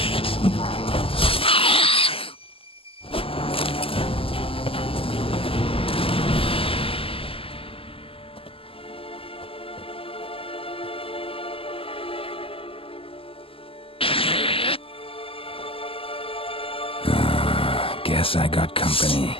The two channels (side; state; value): right; late; 0.26 ms